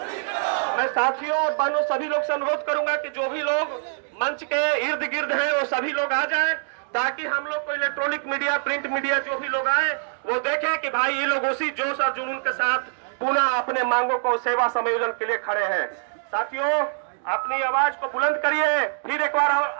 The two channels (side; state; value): left; silent; 62 dB below the other